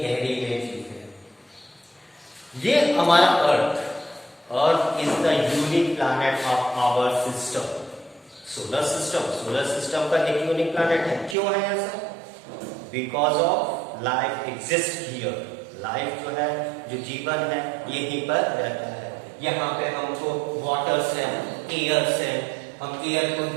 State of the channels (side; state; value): left; drops out; at 11.4 s